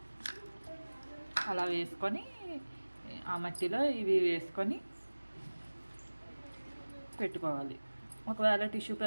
అలా వేసుకొని ఆ మట్టిలో ఇవి వేసుకొని పెట్టుకోవాలి. ఒకవేళ టిష్యూ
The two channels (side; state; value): both; inverted; correlation -1.00